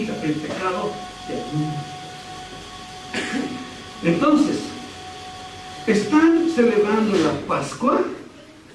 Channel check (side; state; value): both; identical; correlation 1.00